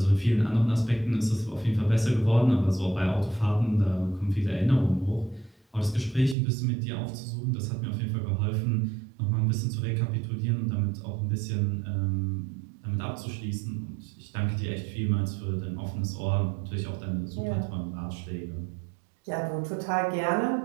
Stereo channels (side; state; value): left; drops out; at 6.4 s